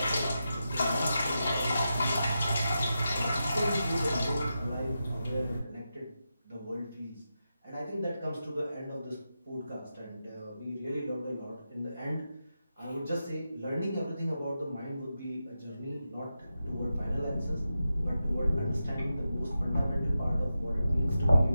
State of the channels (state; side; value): inverted; both; correlation -0.89